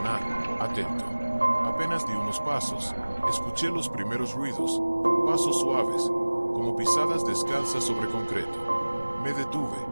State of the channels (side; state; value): both; inverted; correlation -1.00